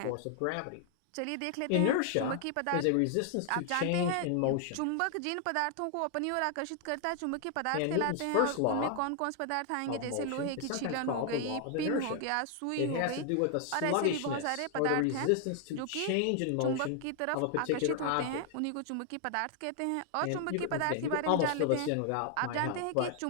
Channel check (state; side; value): different; both; correlation 0.00